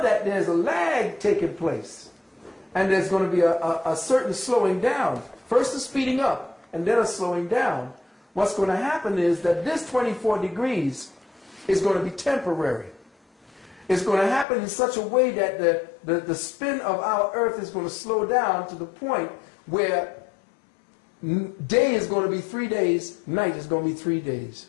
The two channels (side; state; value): right; drops out; at 14.5 s